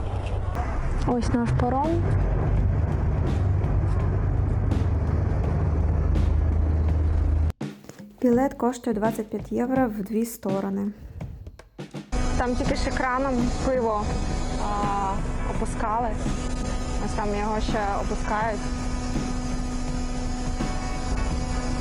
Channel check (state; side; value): identical; both; correlation 1.00